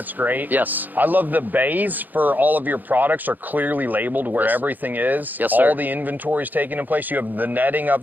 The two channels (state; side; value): late; left; 0.085 ms